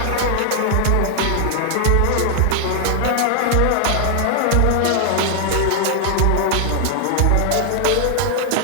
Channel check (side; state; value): both; different; correlation 0.00